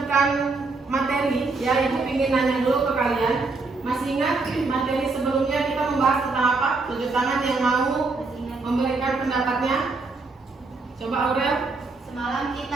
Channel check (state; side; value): quieter; left; 3.8 dB